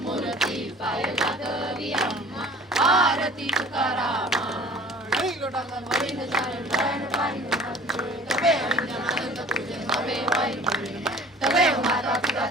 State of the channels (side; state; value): both; normal; correlation 0.47